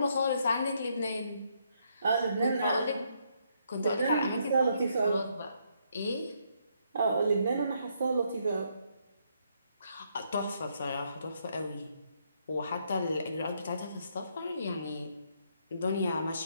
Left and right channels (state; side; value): inverted; both; correlation -0.74